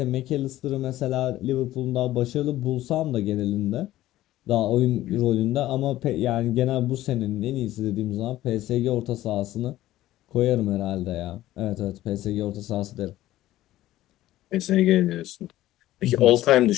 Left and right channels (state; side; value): quieter; right; 15.0 dB